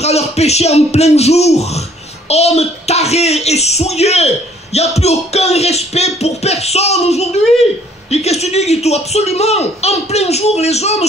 à leur péché en plein jour. Hommes tarés et souillés. Il n'y a plus aucun respect pour personne aujourd'hui. Et qu'est-ce que tu dis, Guito? Absolument. En plein jour, les hommes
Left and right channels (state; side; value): normal; both; correlation 0.60